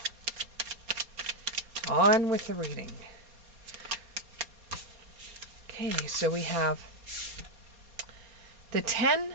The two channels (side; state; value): left; late; 4.2 ms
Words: On with the reading. Okay, so we have the 10